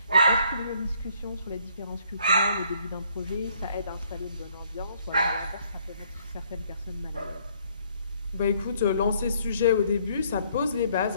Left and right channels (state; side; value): inverted; both; correlation -0.65